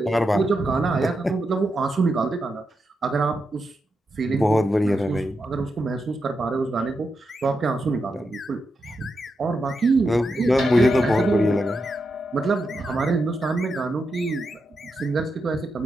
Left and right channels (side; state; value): both; normal; correlation 0.86